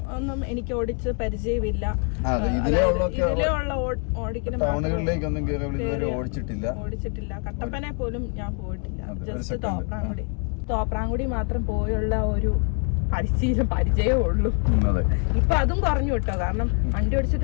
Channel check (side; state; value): right; quieter; 39.8 dB